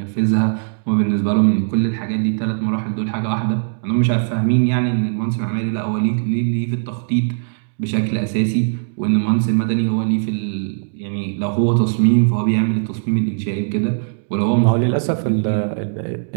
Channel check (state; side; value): silent; left; digital silence